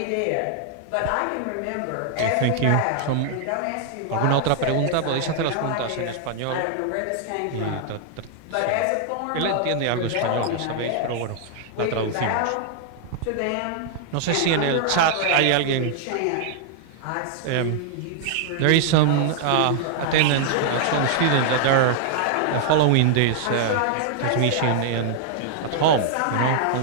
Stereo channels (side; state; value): both; different; correlation 0.00